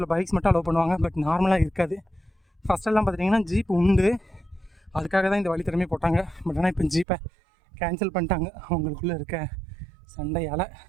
பைக்ஸ் மட்டும் அலோவ் பண்ணுவாங்க, பட் நார்மலாக இருக்காது. ஃபஸ்ட்டெல்லாம் பார்த்திங்கன்னா ஜீப் உண்டு, அதுக்காக தான் இந்த வழி திறமையை போட்டாங்க. பட் ஆனால் இப்போ ஜீப்பை கேன்சல் பண்ணிட்டாங்க அவங்களுக்குள்ளே இருக்க சண்டையால்.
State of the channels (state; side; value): drops out; left; at 7.1 s